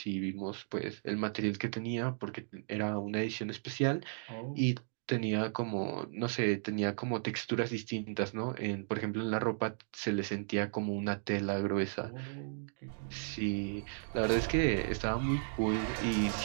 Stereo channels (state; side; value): silent; left; digital silence